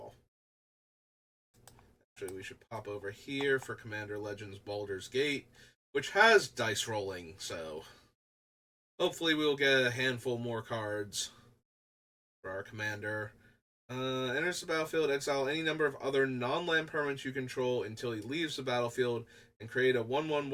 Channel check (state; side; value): identical; both; correlation 1.00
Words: Actually, we should pop over here for Commander Legends Baldur's Gate, which has dice rolling, so hopefully we'll get a handful more cards for our commander. Enters the battlefield, exile any number of other non-land permanents you control until he leaves the battlefield, and create a 1/1